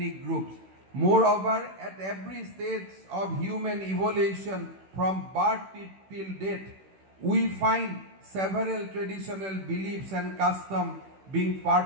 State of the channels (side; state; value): left; late; 16 ms